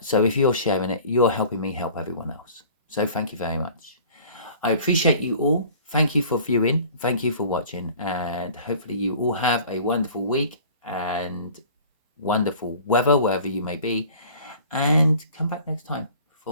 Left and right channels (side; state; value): both; inverted; correlation -0.47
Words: so if you're sharing it, you're helping me help everyone else. So thank you very much. I appreciate you all. Thank you for viewing. Thank you for watching. And hopefully you all have a wonderful week and wonderful weather wherever you may be. And come back next time